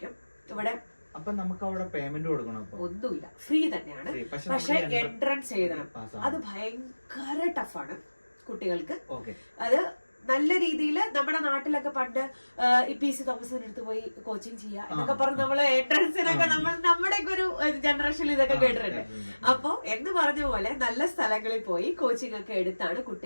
ഇവിടെ. അപ്പൊ നമുക്ക് അവിടെ പേയ്മെന്റ് കൊടുക്കണം? ഒന്നുമില്ല, ഫ്രീ തന്നെയാണ്. പക്ഷെ എൻട്രൻസ് എഴുതണം. അത് ഭയങ്കര ടഫാണ് കുട്ടികൾക്ക്. അത് നല്ല രീതിയിൽ നമ്മുടെ നാട്ടിലൊക്കെ പണ്ട് PC തോമസിന്റെ അടുത്ത് പോയി കോച്ചിങ് ചെയ്യുക എന്നൊക്കെ പറഞ്ഞ് നമ്മള് എൻട്രൻസിനൊക്കെ നമ്മുടെ ഒരു ജനറേഷനിൽ ഇതൊക്കെ കേട്ടിട്ടുണ്ട്. അപ്പൊ എന്ന് പറഞ്ഞ പോലെ നല്ല സ്ഥലങ്ങളിൽ പോയി കോച്ചിങ് ഒക്കെ എടുത്താണ്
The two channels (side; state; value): both; inverted; correlation -1.00